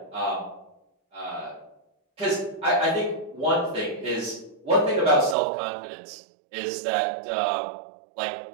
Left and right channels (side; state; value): left; drops out; at 5.4 s